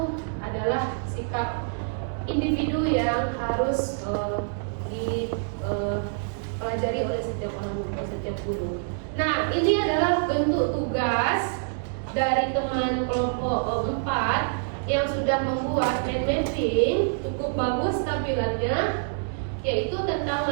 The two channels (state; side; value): silent; left; digital silence